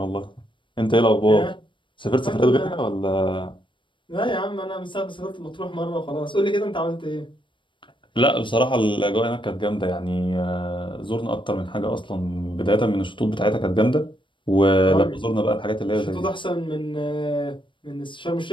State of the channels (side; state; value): right; late; 0.24 ms